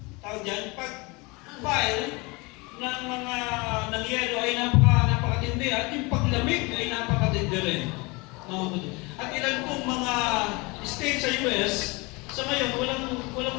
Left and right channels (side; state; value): right; quieter; 26.4 dB